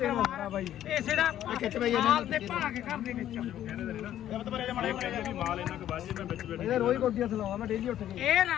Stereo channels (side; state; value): right; quieter; 11.7 dB